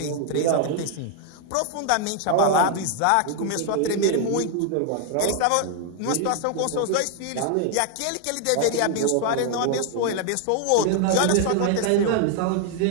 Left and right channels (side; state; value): both; different; correlation 0.00